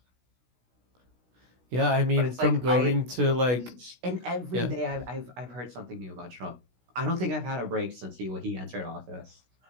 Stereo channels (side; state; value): left; late; 16 ms